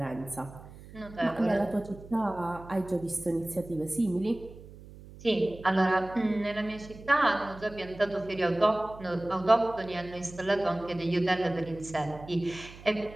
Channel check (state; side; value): noise; right; hum, 18 dB below the sound